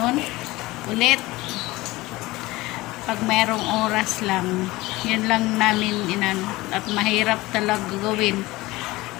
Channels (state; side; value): quieter; right; 19.7 dB